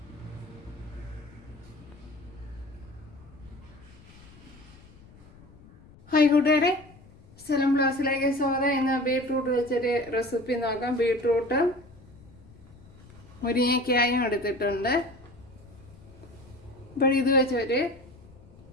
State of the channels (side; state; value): left; noise; rumble, 22 dB below the sound